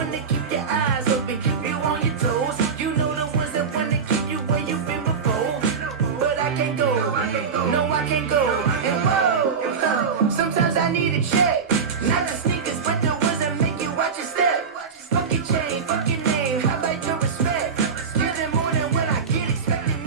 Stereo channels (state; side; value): quieter; left; 5.9 dB